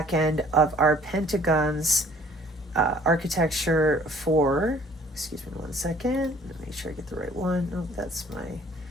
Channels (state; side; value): normal; both; correlation 0.56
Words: end of our Pentagon's architecture for, excuse me 1 second, let me make sure I get the right one. Oh, that's